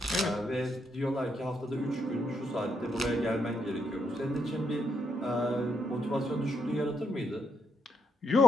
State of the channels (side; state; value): both; normal; correlation 0.78